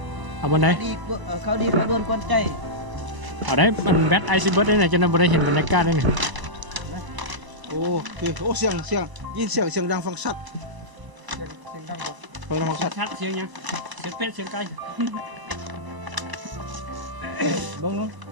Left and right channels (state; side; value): late; left; 1.0 ms